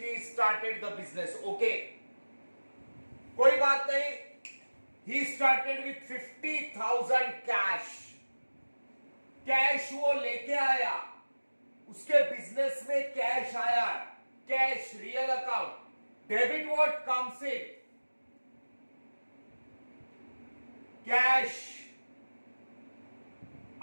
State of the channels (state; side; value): inverted; both; correlation -1.00